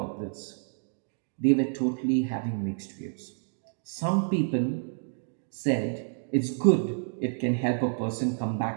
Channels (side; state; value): left; silent; digital silence